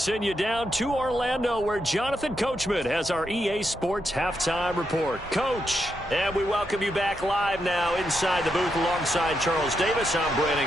you down to Orlando, where Jonathan Coachman has our EA Sports halftime report. Coach, and we welcome you back live now inside the booth alongside Charles Davis. I'm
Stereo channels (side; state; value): both; normal; correlation 0.83